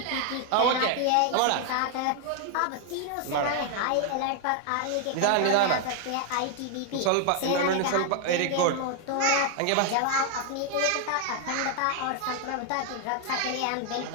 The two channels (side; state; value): both; different; correlation 0.00